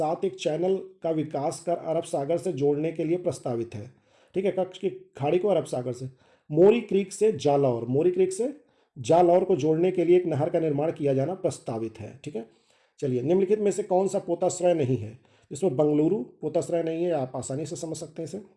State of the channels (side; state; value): both; identical; correlation 1.00